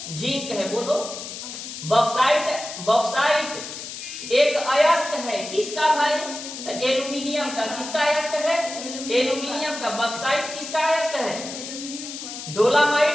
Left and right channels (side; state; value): left; noise; hiss, 9 dB below the sound